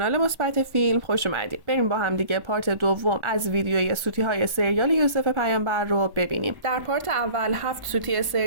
مثبت فیلم خوش اومدید. بریم با هم دیگه پارت دوم از ویدیوی سوتی های سریال یوسف پیامبر رو ببینیم. در پارت اول 7 سوتی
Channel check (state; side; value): late; left; 1.1 ms